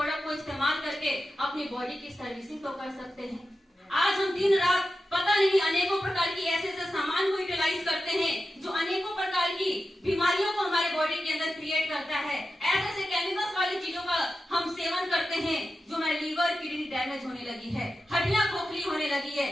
को इस्तेमाल करके अपनी बॉडी की सर्विसिंग तो कर सकते हैं। आज हम दिन रात पता नहीं अनेकों प्रकार की ऐसे सामान को यूटिलाइज करते हैं जो अनेकों प्रकार की बीमारियों को हमारे बॉडी के अंदर क्रिएट करता है। ऐसे केमिकल्स वाली चीजों का हम सेवन करते हैं जो हमारे लीवर किडनी डैमेज होने लगी है, हड्डियां खोखली होने लगी है,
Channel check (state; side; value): normal; both; correlation 0.92